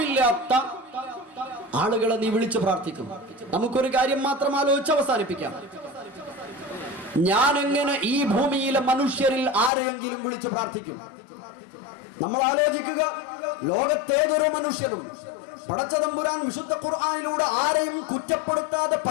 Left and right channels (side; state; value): right; drops out; at 9.7 s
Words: ആളുകളെ നീ വിളിച്ചു പ്രാർത്ഥിക്കും? നമുക്കൊരു കാര്യം മാത്രം ആലോചിച്ച് അവസാനിപ്പിക്കാം. ഞാൻ എങ്ങനെ ഈ ഭൂമിയിലെ മനുഷ്യരിൽ ആരെയെങ്കിലും വിളിച്ചു പ്രാർത്ഥിക്കും? നമ്മൾ ആലോചിക്കുക. ലോകത്തേതൊരു മനുഷ്യനും പടച്ചതമ്പുരാൻ വിശുദ്ധ ഖുർആനിലൂടെ ആരെയും കുറ്റപ്പെടുത്താതെ